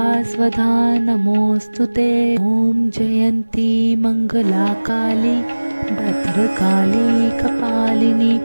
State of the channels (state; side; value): inverted; both; correlation -1.00